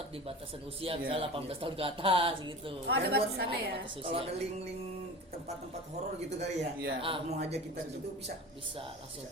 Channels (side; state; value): both; normal; correlation 0.35